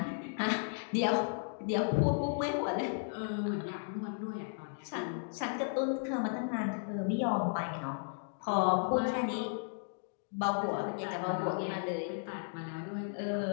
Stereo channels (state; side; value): silent; right; digital silence